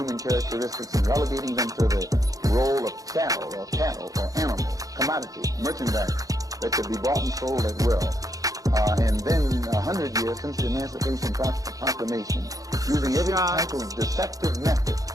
characteristics and relegating them to the role of cattle or animals, commodity, merchandise that could be bought and sold at will. And then 100 years since the Emancipation Proclamation, using every type of deceptive method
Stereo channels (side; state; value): left; late; 0.17 ms